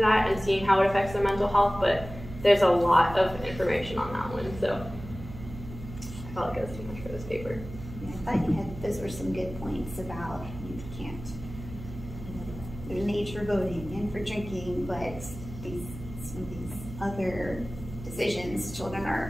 and seeing how it affects their mental health, but there's a lot of information on that one, so I felt like it was too much for this paper. Yeah, I thought those were some good points about you can't, there's an age for voting and for drinking, but some of these other decisions children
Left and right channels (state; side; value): noise; right; hum, 12 dB below the sound